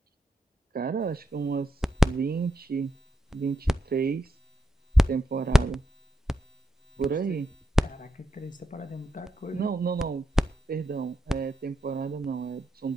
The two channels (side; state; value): both; normal; correlation 0.84